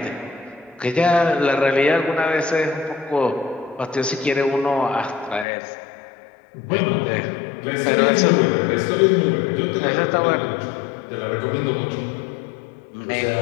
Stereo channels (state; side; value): drops out; right; at 5.5 s